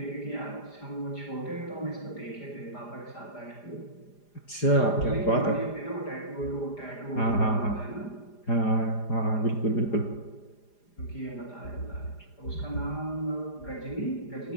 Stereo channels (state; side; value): late; right; 4.9 ms